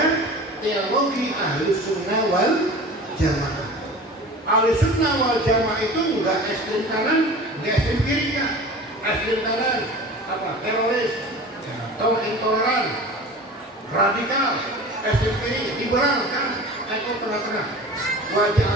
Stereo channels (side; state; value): both; normal; correlation 0.38